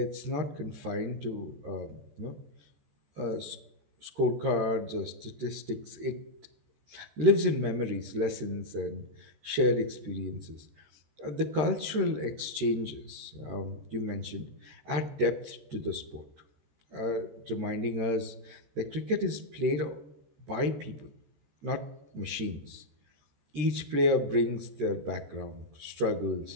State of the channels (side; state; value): left; late; 13 ms